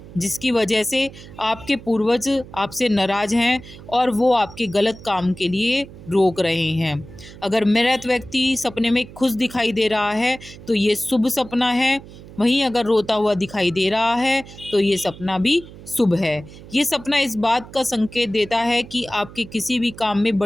जिसकी वजह से आपके पूर्वज आपसे नाराज़ हैं और वो आपके गलत काम के लिए रोक रहे हैं। अगर मृत व्यक्ति सपने में खुश दिखाई दे रहा है तो ये शुभ सपना है। वहीं अगर रोता हुआ दिखाई दे रहा है तो ये सपना भी शुभ है। ये सपना इस बात का संकेत देता है कि आपके किसी भी काम में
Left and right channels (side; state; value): right; noise; hum, 17 dB below the sound